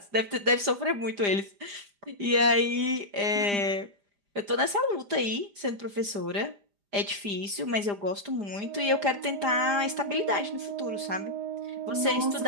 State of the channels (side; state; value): left; late; 5.0 ms